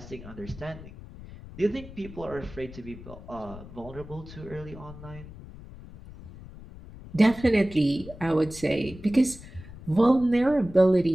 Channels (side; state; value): left; noise; rumble, 15 dB below the sound